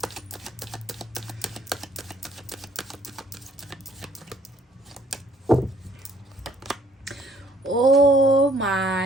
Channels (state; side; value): normal; both; correlation 0.63